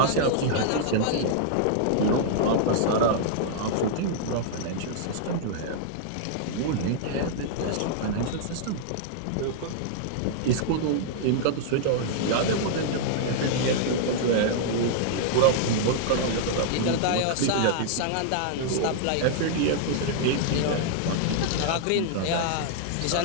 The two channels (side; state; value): both; different; correlation -0.01